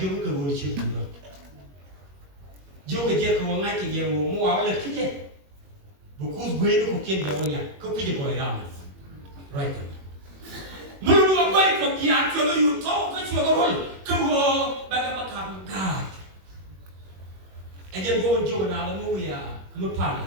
ke gua kecil juga. Jauh ke dia ke wangai ke dia mau awal lagi je. Bukus gue itu kukian dia wanya, kukian gua ramai. Right. Mulu gua itu dia kalau you tahu ke cuma gua gua bagaimana gad. Ajar gua banjir nak lalu ya, lupa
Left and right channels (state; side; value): late; left; 21 ms